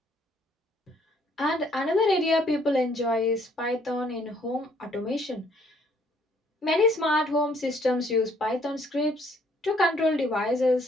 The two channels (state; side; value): normal; both; correlation 0.64